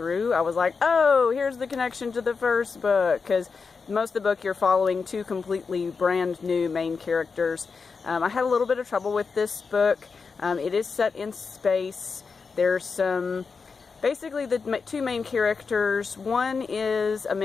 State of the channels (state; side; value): quieter; right; 5.0 dB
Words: I was like, oh, here's the connection to the first book, because most of the book you're following 2 completely brand new main characters. I had a little bit of trouble with this book. It is set in space. There's some... Basically, the 2 main characters, one is a